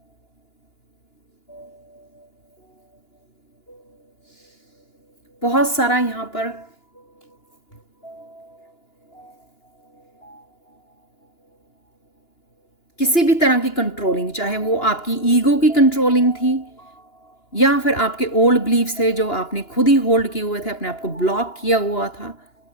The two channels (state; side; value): late; right; 2.9 ms